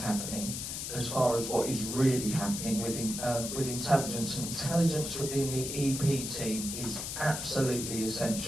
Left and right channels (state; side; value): noise; left; hiss, 5 dB below the sound